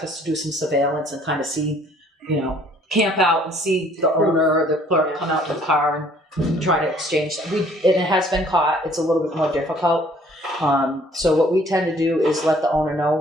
us to do some surveillance and kind of see, camp out and see the owner or the clerk come out to the car and try to exchange. And it has been caught. It's a little bit more difficult. So what we tend to do is let the owner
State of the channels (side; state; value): both; normal; correlation 0.58